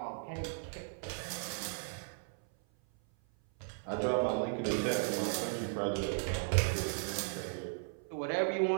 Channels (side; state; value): left; silent; 54 dB below the other